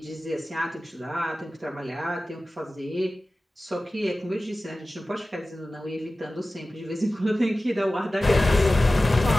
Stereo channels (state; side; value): normal; both; correlation 0.96